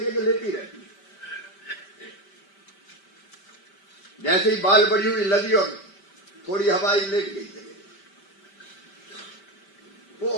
लेटी रहती है, जैसे ही बाल बड़ी हुई लदी और थोड़ी हवा लेट गई जगह जगह,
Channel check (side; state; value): right; late; 5.1 ms